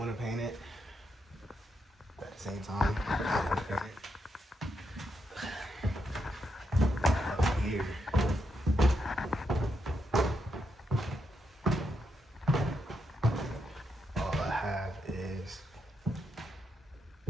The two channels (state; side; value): normal; both; correlation 0.82